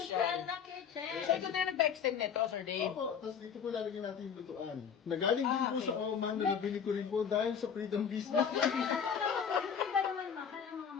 na kitchen. So, ito na nag-extend nito, Sir Dave. Opo, tapos dito po lalagyan natin yung lutuan. Nagaling din po okay. sa Oman, na nabili ko rin po dahil sa freedom business. Hindi ba naman mahal ang mga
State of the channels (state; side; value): quieter; right; 7.3 dB